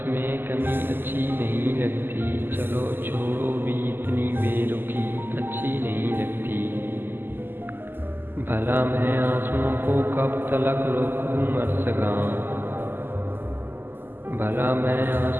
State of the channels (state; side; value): late; left; 0.096 ms